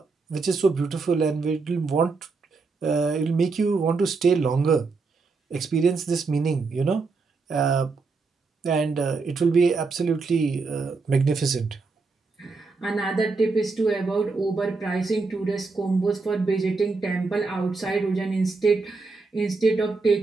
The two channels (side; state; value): left; quieter; 4.2 dB